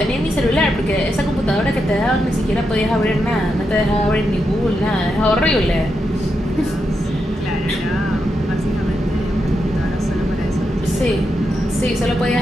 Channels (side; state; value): both; normal; correlation 0.85